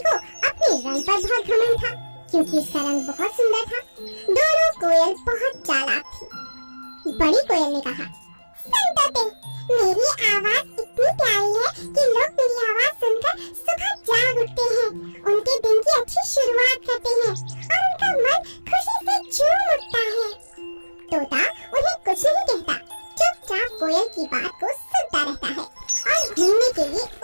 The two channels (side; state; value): both; inverted; correlation -1.00